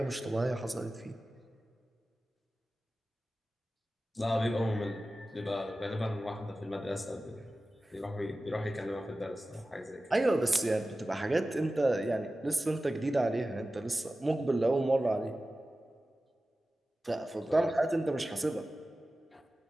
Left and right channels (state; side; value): normal; both; correlation 0.95